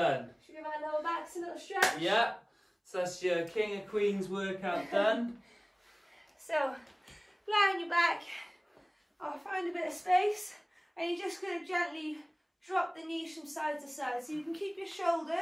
Should we give our lower backs a little stretch? Yeah, so that's your King of Queens workout done. So, lie on your back, I'll find a bit of space, and you're just going to gently drop the knees from side to side. So you can keep your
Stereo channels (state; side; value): identical; both; correlation 1.00